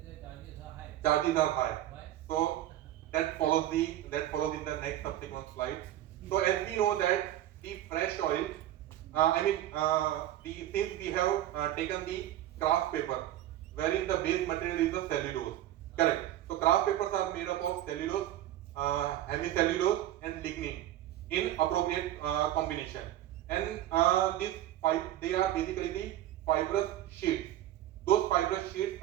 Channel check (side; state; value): left; quieter; 13.2 dB